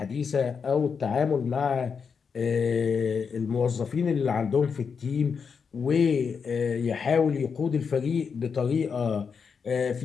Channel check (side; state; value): right; quieter; 6.0 dB